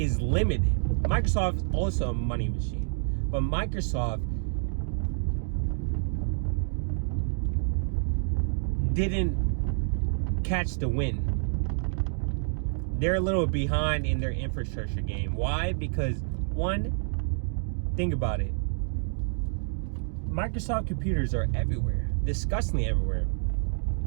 limited. Microsoft is also a money machine. But Microsoft didn't catch the wind. They're a little behind in their infrastructure game. Why? Because, one, think about it. Microsoft computers are everywhere. Disgustingly everywhere.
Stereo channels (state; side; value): silent; left; digital silence